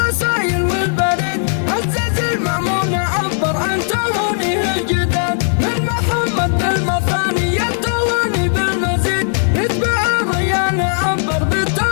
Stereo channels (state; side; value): silent; right; digital silence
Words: والبريد، عزز المأمون عبر عن تهانيه الجداد. من محمد بالمثاني التهاني بالمزيد، يتبع الريان عبر